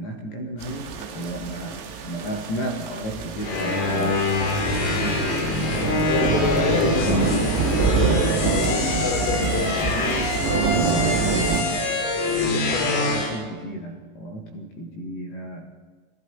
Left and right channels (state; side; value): late; right; 18 ms